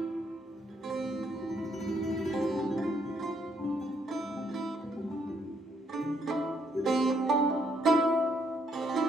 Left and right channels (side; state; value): both; normal; correlation 0.72